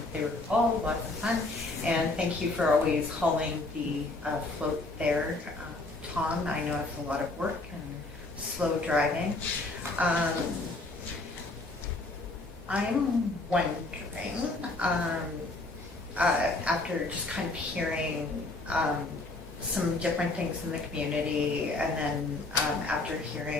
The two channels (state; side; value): quieter; right; 3.0 dB